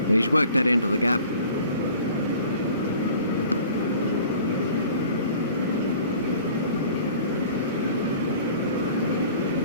He's worked that into the gap.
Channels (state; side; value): inverted; both; correlation -0.47